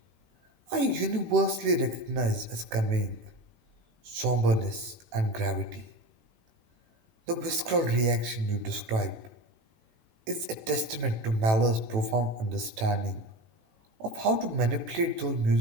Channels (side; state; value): left; late; 18 ms